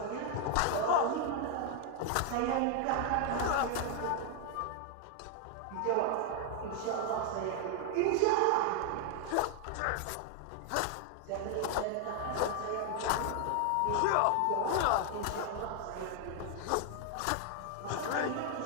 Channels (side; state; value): both; different; correlation 0.00